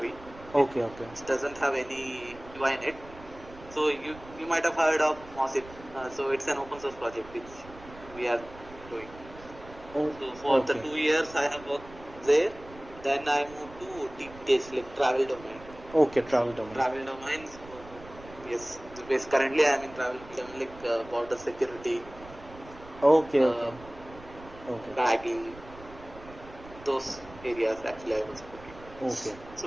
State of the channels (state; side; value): noise; right; rumble, 18 dB below the sound